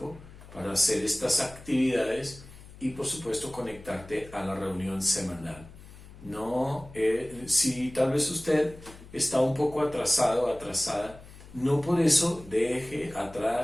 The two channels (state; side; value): noise; left; hum, 19 dB below the sound